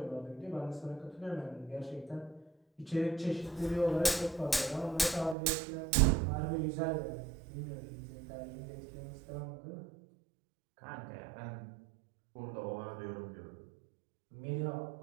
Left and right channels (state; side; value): drops out; left; at 5.4 s